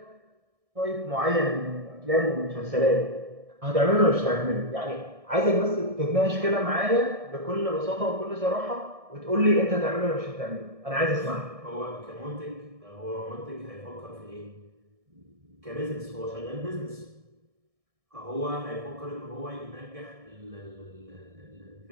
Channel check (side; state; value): left; late; 1.6 ms